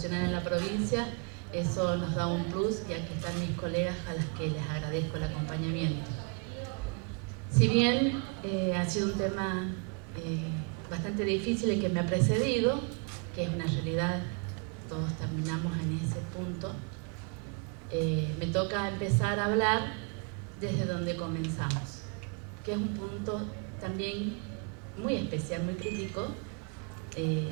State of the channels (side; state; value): left; quieter; 35.3 dB